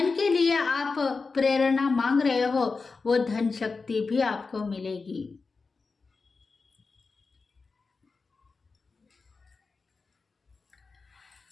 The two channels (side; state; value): right; quieter; 4.3 dB